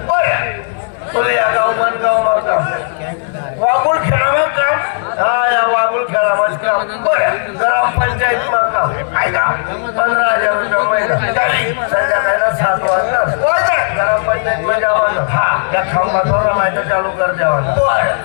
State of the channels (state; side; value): silent; right; digital silence